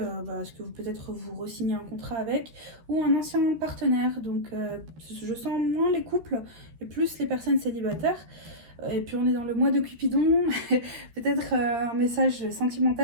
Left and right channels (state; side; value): late; left; 13 ms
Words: à ce que vous peut-être vous re-signez un contrat avec ou un ancien partenaire. Donc je sens moins les couples et plus les personnes célibataires. Et puis on est dans le mois de Cupidon, peut-être un message